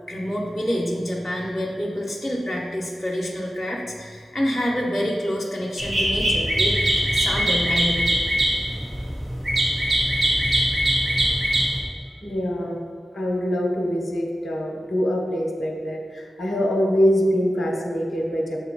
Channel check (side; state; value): both; normal; correlation 0.91